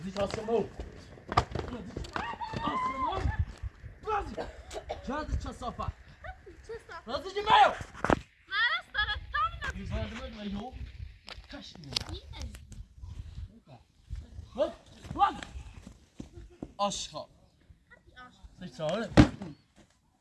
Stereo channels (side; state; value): both; identical; correlation 1.00